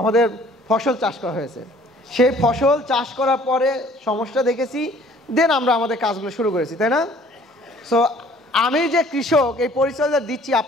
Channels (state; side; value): normal; both; correlation 0.55